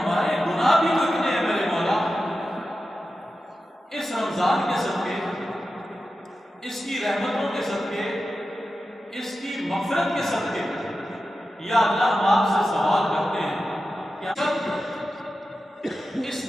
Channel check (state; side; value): normal; both; correlation 0.92